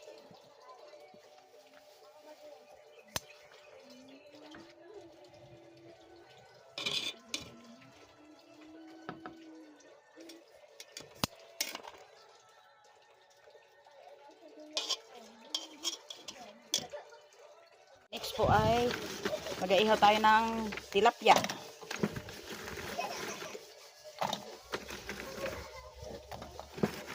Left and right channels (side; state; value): both; identical; correlation 1.00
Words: Next po ay mag-ihaw tayo ng tilapia.